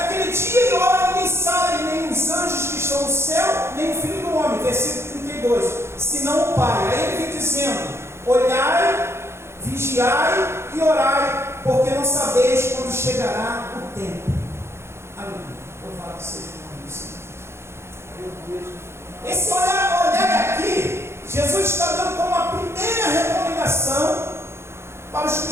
dia e hora ninguém sabe, nem os anjos que estão no céu, nem o Filho do Homem. Versículo 32. Senão o Pai. Aí ele vem dizendo: olhai, vigiai e orai, porque não sabeis quando chegará o tempo. Aleluia. Louvado seja o nome do Senhor. Esse olhar aqui, Jesus está dando como a primeira recomendação para os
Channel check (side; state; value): left; late; 0.12 ms